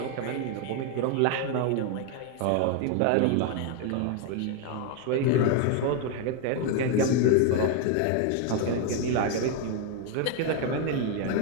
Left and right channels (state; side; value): different; both; correlation 0.01